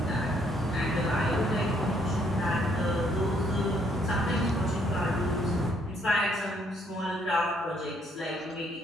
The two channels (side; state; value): both; normal; correlation 0.68